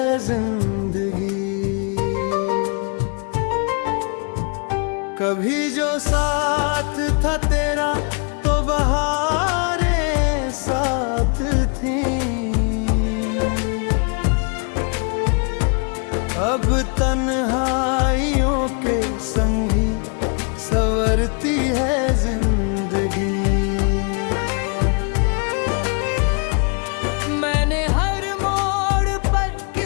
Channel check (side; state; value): right; quieter; 38.0 dB